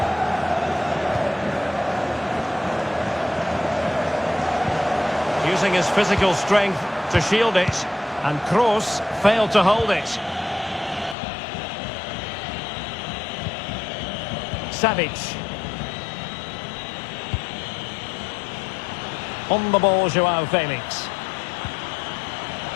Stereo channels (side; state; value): right; drops out; at 11.2 s